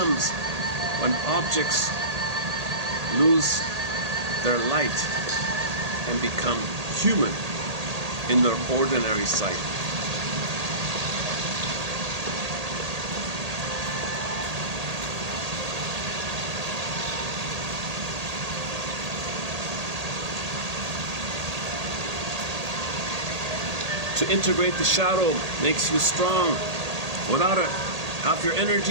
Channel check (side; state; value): left; late; 1.8 ms